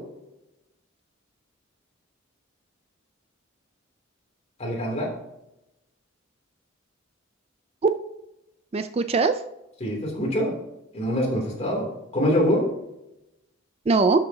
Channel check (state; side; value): normal; both; correlation 0.39